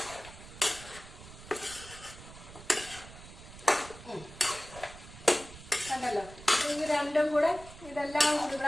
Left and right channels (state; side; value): noise; right; rumble, 16 dB below the sound